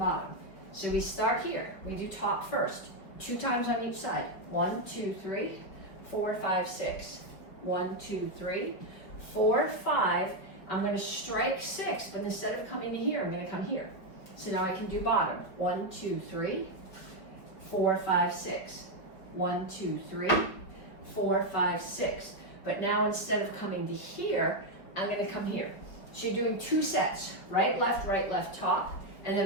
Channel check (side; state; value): right; late; 5.3 ms